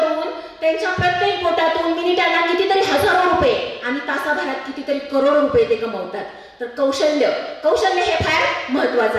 त्यांच्या प्रत्येक बोटातून मिनिटाला कितीतरी हजारो रुपये आणि तासाभरात कितीतरी करोड रुपये ते कमवतात. तर कौशल्य हे फार महत्वाचं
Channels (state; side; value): identical; both; correlation 1.00